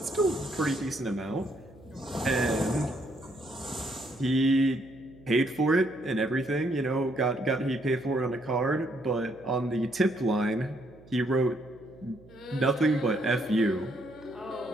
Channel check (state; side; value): noise; right; hum, 23 dB below the sound